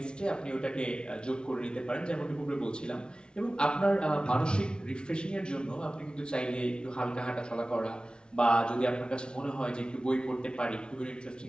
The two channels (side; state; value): right; late; 0.055 ms